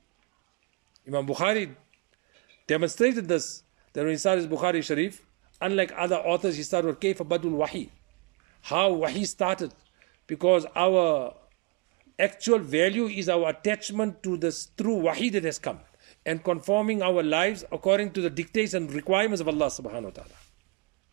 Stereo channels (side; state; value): left; quieter; 27.8 dB